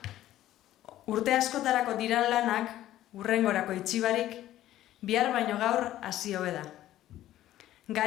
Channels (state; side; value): quieter; right; 13.6 dB